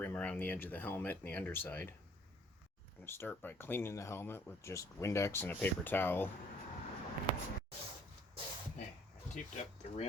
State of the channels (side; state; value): both; normal; correlation 0.59